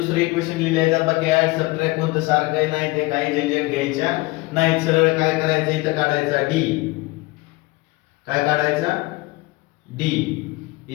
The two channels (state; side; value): quieter; right; 22.5 dB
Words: इक्वेशन लिहिले जातात. बाकी ऍड सबट्रॅक्ट कोणतं सारखं आहे नाही, ते काही झंझट घ्यायच्या नाही. सरळ काय करायचं, इथं काढायचा d. काय काढायचा, d